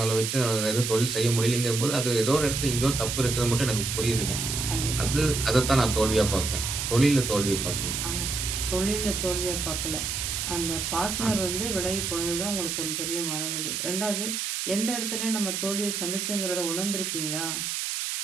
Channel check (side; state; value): right; noise; hiss, 2 dB below the sound